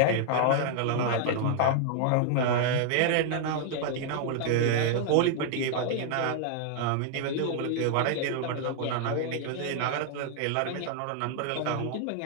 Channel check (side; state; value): both; different; correlation 0.00